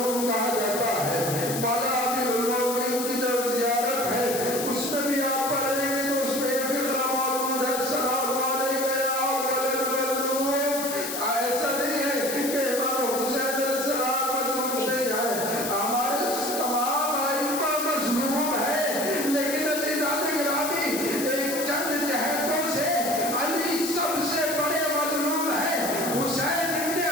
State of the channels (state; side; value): noise; left; hiss, 5 dB below the sound